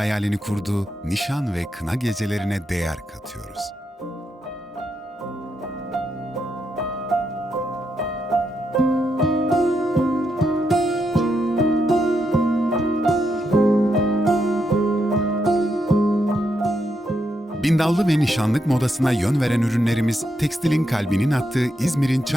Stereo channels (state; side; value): normal; both; correlation 0.81